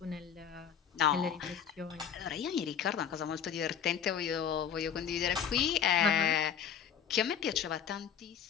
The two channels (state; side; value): quieter; right; 8.3 dB